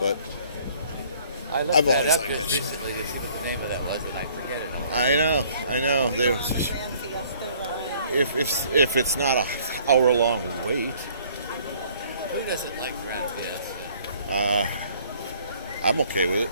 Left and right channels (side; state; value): both; inverted; correlation -0.58